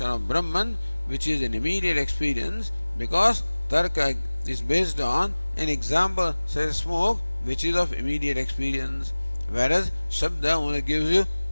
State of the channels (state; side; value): inverted; both; correlation -1.00